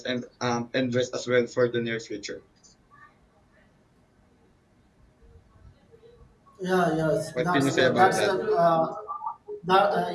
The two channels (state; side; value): identical; both; correlation 1.00